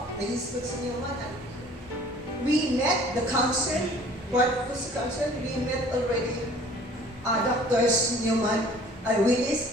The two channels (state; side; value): normal; both; correlation 0.51